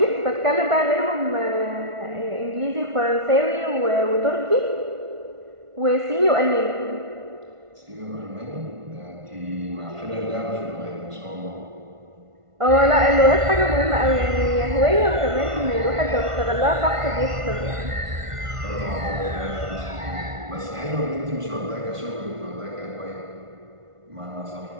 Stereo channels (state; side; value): late; left; 1.5 ms